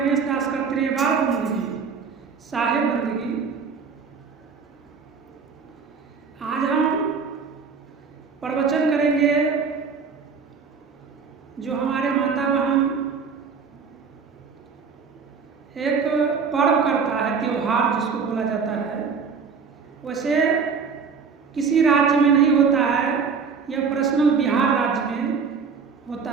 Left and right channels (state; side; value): quieter; left; 5.6 dB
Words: दास का त्रिवार बंदगी, साहेब बंदगी। आज हम प्रवचन करेंगे जो हमारे माता बहन एक पर्व करता है, त्योहार जिसको बोला जाता है। वैसे किसी राज्य में नहीं होता है, यह पर्सनल बिहार राज्य में होता